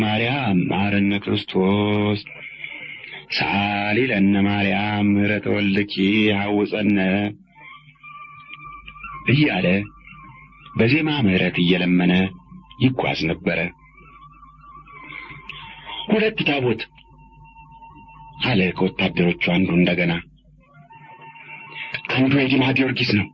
ማርያም መሐረነ ክርስቶስ ሳሊ ለነ ማርያም ምሕረተ ወልድኪ ሐውፀነ እያለ በዜማ ምሕረት እየለመነ ይጓዝ ነበረ። ሁለት ታቦት አለ ከወታደሮቹ አንዱ እንደገና። አንዱ የዲማ ጊዮርጊስ ነው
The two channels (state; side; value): identical; both; correlation 1.00